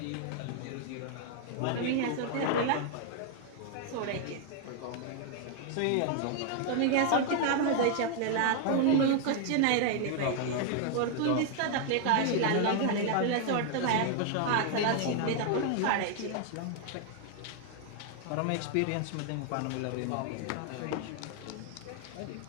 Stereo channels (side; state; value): both; different; correlation 0.00